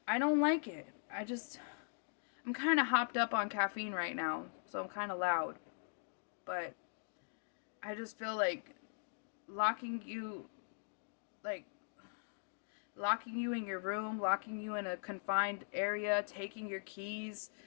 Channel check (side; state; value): right; silent; digital silence